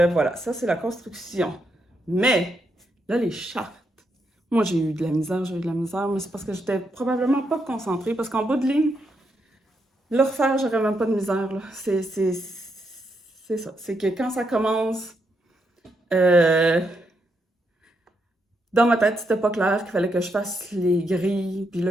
ça c'est la construction. Mais, là, les chartes. Moi, j'ai eu de la misère, mais c'est parce que j'étais probablement pas concentrée. Parce qu'en bout de ligne, le refaire, j'aurais même pas de misère. Là. C'est ça. C'est que quand ça commence, dans ma tête, c'était pas clair qu'il fallait que je fasse les grilles. Puis là,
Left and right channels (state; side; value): normal; both; correlation 0.80